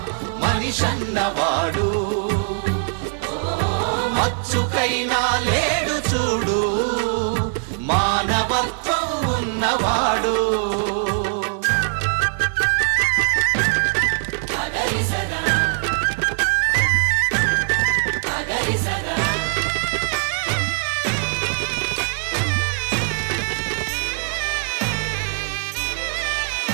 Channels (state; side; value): silent; left; 65 dB below the other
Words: మనిషన్నవాడు, మచ్చుకైనా లేడు చూడు మానవత్వం ఉన్నవాడు.